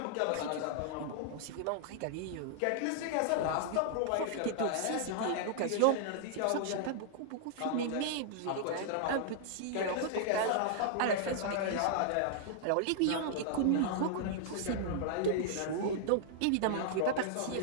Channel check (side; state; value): both; different; correlation -0.01